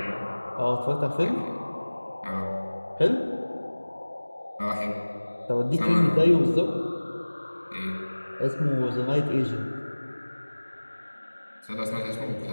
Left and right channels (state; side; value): inverted; both; correlation -1.00